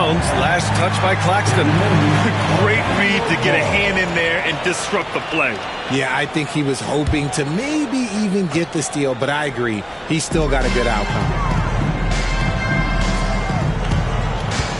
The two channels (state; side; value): identical; both; correlation 1.00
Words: Last touch by Claxton. Great read to get a hand in there and disrupt the play. Yeah, I think he was hoping to maybe even get the steal, but I agree. He's still got a good outcome.